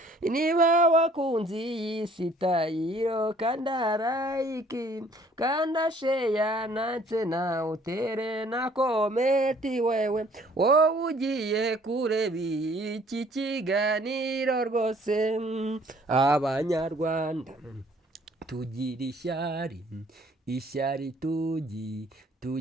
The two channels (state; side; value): normal; both; correlation 0.58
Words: niba wakunze iyi sitayiro kanda like kanda share ndetse nawe utere na komenti wewe wowe ugiye kureba iki kiganiro rwose abanyarwanda tugira ishyari